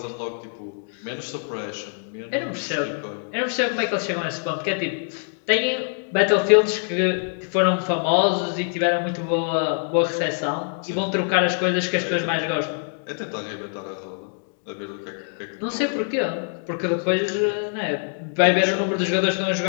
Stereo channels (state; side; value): silent; right; 63 dB below the other